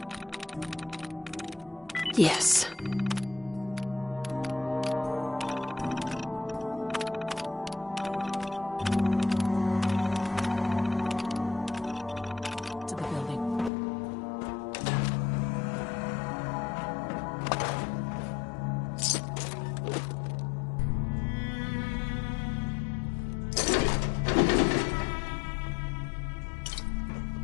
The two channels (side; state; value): right; drops out; at 13.7 s